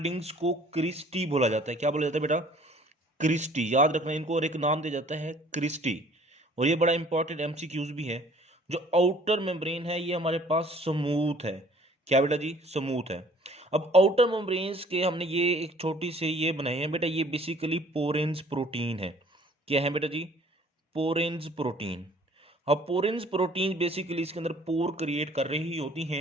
को क्रिस्टी बोला जाता है। क्या बोला जाता है बेटा? क्रिस्टी। याद रखना इनको, और एक नाम दिया जाता है क्रिस्टी। और ये बड़ा इंपॉर्टेंट एमसीक्यूज भी है। जो आउटर मेम्ब्रेन है ये हमारे पास स्मूथ है। क्या बेटा जी? स्मूथ है। अब आउटर मेम्ब्रेन्स के हमने ये एक छोटी से ये बनाए हैं बेटा, ये बेसिकली पोरेंस प्रोटीन है। क्या है बेटा जी? पोरेंस प्रोटीन। अब पोरेंस प्रोटीन बेसिकली इसके अंदर पोर क्रिएट कर रही होती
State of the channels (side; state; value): both; normal; correlation 0.55